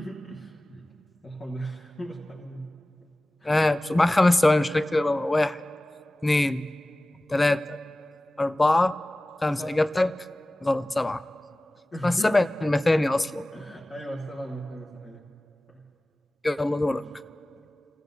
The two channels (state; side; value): normal; both; correlation 0.98